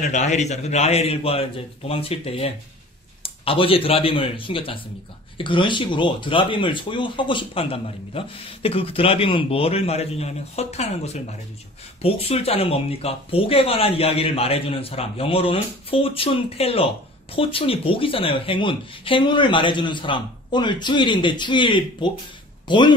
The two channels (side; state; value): both; normal; correlation 0.45